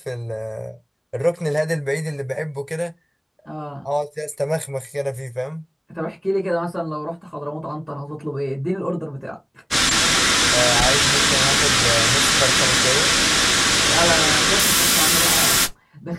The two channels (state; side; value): identical; both; correlation 1.00